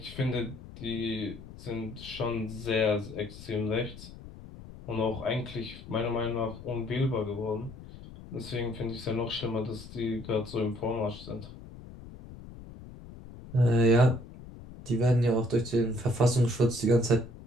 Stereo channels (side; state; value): left; noise; rumble, 15 dB below the sound